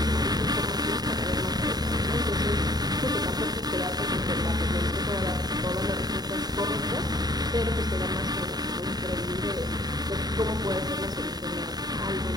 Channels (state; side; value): late; left; 0.19 ms